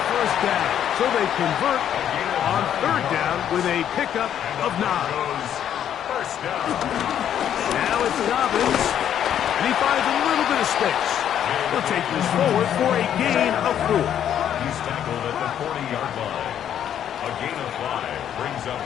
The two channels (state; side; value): quieter; right; 9.9 dB